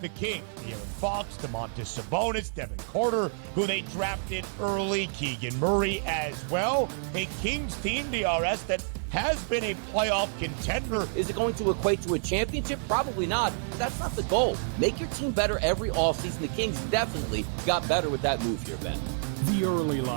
the Kings. De'Aaron Fox, Domantas Sabonis, Devin Carter, who they drafted early, Keegan Murray as well. A Kings team, DRS, that has been a playoff contender. Is it going to equate to a championship? Probably not. That's not the goal. Make your team better every offseason. The Kings definitely got better with that move here, Ben. The Early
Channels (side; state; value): left; silent; digital silence